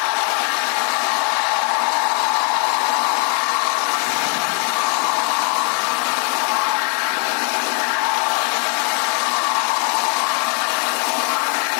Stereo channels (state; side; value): quieter; right; 39.8 dB